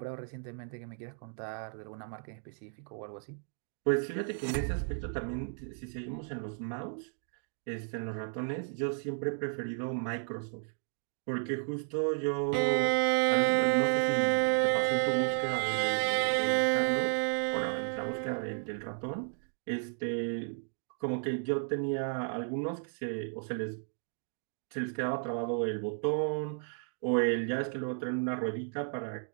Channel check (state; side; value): silent; left; 56 dB below the other